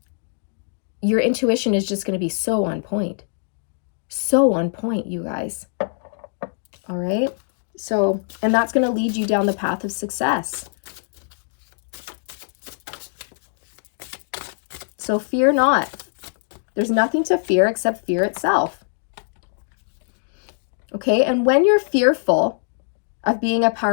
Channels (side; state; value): right; silent; digital silence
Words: your intuition is just going to be so on point. So on point, you guys. All right. So, and that's going to lead you down the path of success. So fear not. There's nothing to fear except fear itself. Okay, and when you're fearful of being a